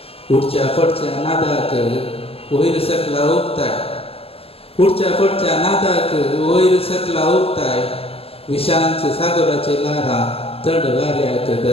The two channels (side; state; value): right; late; 0.28 ms